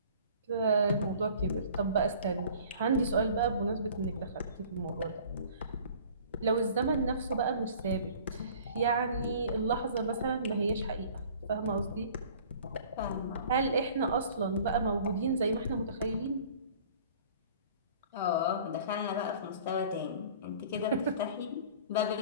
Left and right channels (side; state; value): both; inverted; correlation -0.49